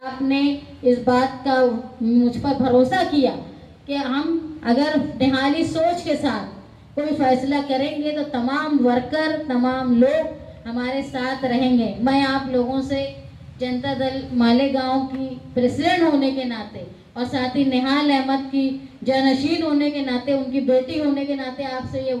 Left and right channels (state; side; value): identical; both; correlation 1.00